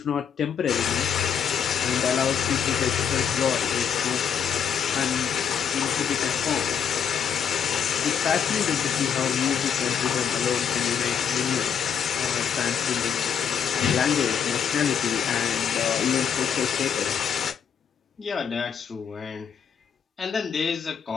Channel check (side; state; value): right; quieter; 7.8 dB